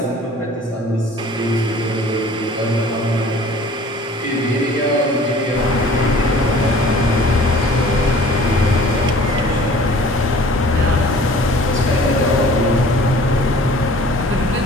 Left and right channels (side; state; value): both; normal; correlation 0.49